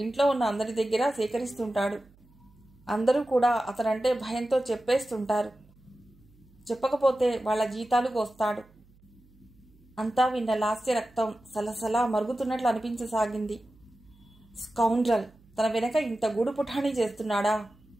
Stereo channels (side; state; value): right; noise; hum, 28 dB below the sound